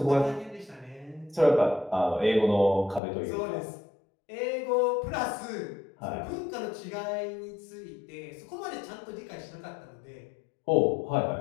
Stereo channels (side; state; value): right; drops out; at 3.0 s